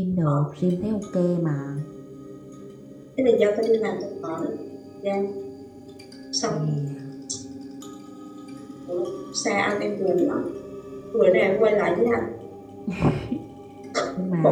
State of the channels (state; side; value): identical; both; correlation 1.00